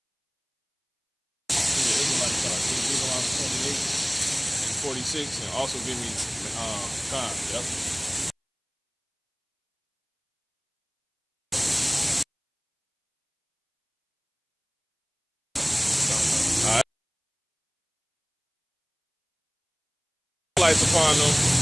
46, and also give me time. Yep. All right. Lights upon them.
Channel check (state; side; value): identical; both; correlation 1.00